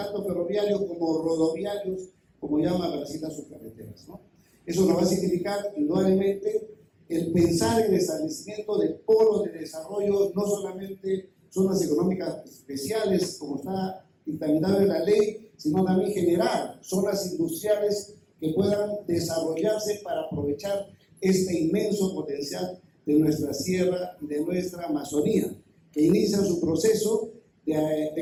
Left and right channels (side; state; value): both; identical; correlation 1.00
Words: ferroviarios como rodoviarios, como llama Brasil a sus carreteras, ¿no? Eso nos va a significar indudablemente el pensar en el establecimiento de polos de desarrollo, no solamente zonas económicas especiales, como está dictaminado en la ley, sino también generar zonas industriales que puedan desarrollarse para aprovechar este inmenso potencial de nuestra sierra y de nuestra Amazonía, que inicia su proceso